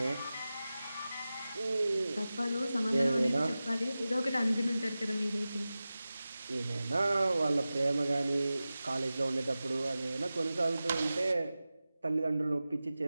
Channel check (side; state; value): both; inverted; correlation -0.95